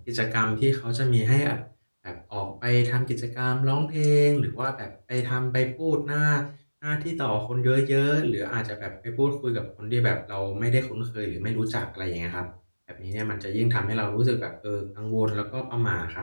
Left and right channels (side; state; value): both; inverted; correlation -1.00